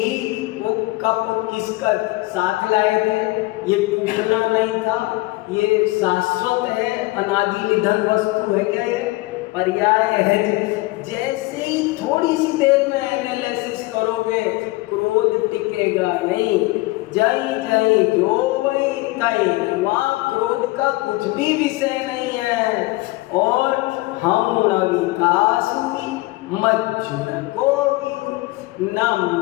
वो कप किसका साथ लाए थे? ये टूटना नहीं था, ये शाश्वत है, अनादि निधन वस्तु है क्या? ये पर्याय है। जैसे ही थोड़ी सी देर में एनालिसिस करोगे, क्रोध टिकेगा नहीं। जय जय जो वही तई, वहाँ क्रोध का कुछ भी विषय नहीं है। और हम न विकास हुई मज्जुन को भी, न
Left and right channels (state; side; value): quieter; right; 21.0 dB